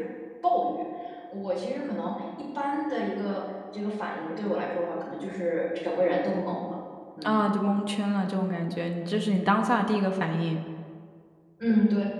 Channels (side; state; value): both; identical; correlation 1.00